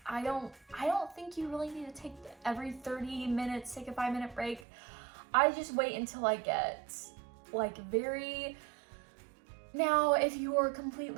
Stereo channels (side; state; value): left; drops out; at 4.7 s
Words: I don't think you really need to take every 30 minutes, take a 5-minute break. I just wait until I get like now, if you are